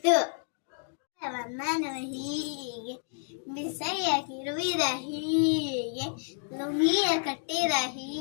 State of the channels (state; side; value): silent; right; 58 dB below the other